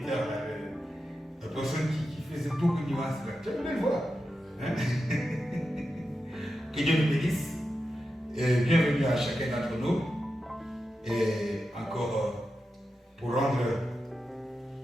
la personne qui faisait beaucoup de nuances. Tu as une belle voix. Hein? Que Dieu nous bénisse. Et bienvenue à chacun d'entre nous. Et encore pour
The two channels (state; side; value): normal; both; correlation 0.90